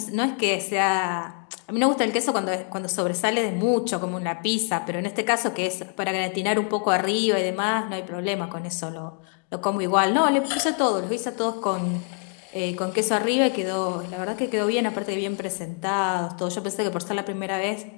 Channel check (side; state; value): right; quieter; 38.1 dB